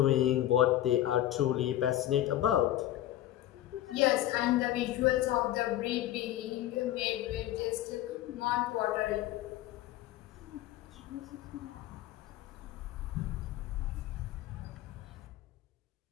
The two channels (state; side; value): quieter; right; 13.6 dB